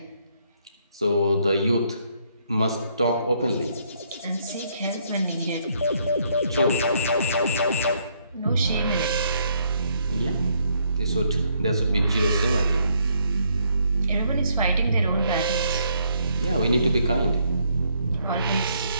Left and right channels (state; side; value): inverted; both; correlation -0.70